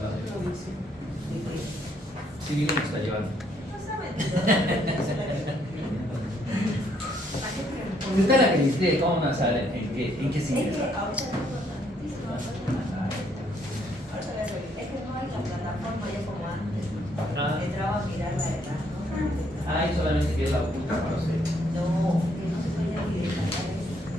Sí, bien lo está llevando. Usted es la que dice cómo no sabe en qué sigue. Es que ahora es importantísimo. Ahora es que no hay la plataforma ya como antes. Entraba a mirar la edad, ¿no? Ay, solamente que es la oculta para usted. No, que no se puede ni descargar eso.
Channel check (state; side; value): normal; both; correlation 0.69